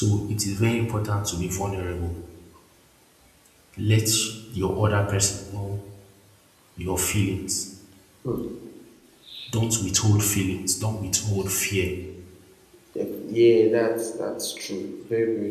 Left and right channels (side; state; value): both; identical; correlation 1.00